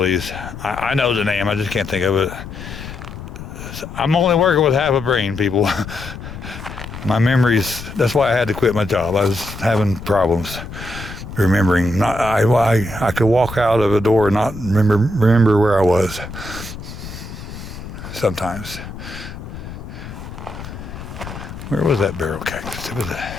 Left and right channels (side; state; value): left; noise; rumble, 11 dB below the sound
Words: these. I know the name, I just can't think of it. I'm only working with half a brain, people. My memories, that's why I had to quit my job. I was having problems remembering. I could walk out of a door and not remember where I was sometimes. Where was that barrel cactus? It was